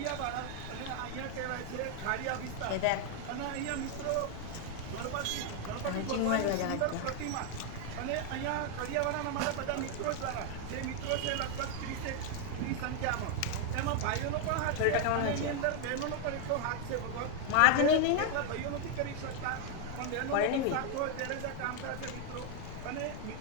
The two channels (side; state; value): both; different; correlation 0.01